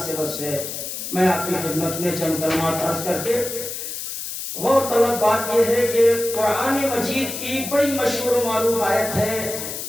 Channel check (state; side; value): noise; left; hiss, 6 dB below the sound